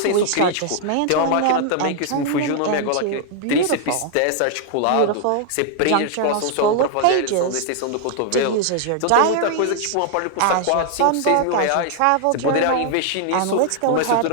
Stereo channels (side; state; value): both; different; correlation 0.00